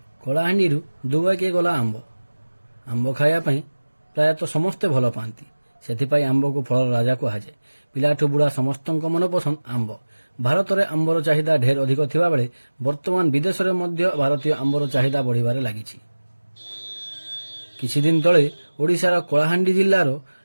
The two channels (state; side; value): inverted; both; correlation -1.00